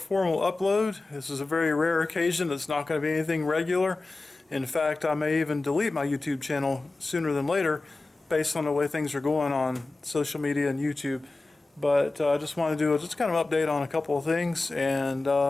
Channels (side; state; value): right; quieter; 3.3 dB